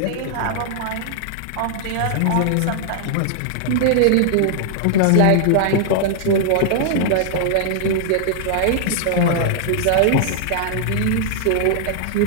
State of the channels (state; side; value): different; both; correlation -0.01